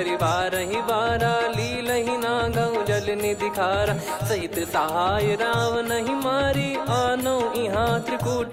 बारहि बारा लीलहि नागौ जल निधि खारा सहित सहाय राव नहीं मारी आनो इहाँ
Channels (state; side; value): identical; both; correlation 1.00